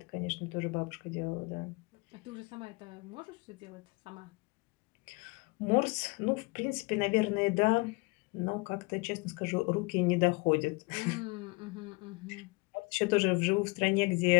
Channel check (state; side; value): quieter; right; 26.4 dB